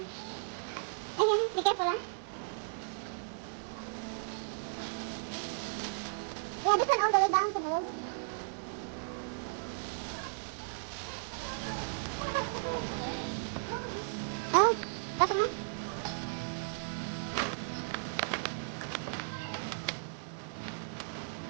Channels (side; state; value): left; silent; digital silence